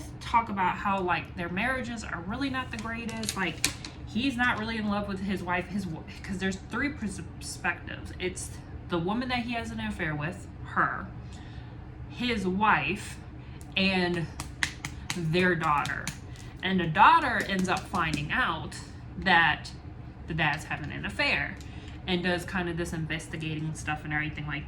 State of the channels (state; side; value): identical; both; correlation 1.00